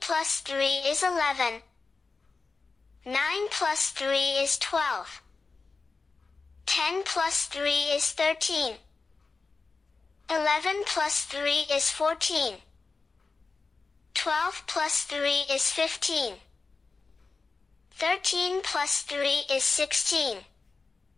plus 3 is 11. 9 plus 3 is 12. 10 plus 3 is 13. 11 plus 3 is 14. 12 plus 3 is 15. 13 plus 3 is 16.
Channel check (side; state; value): right; quieter; 4.2 dB